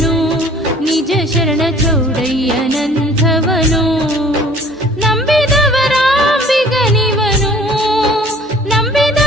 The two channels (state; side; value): normal; both; correlation 0.52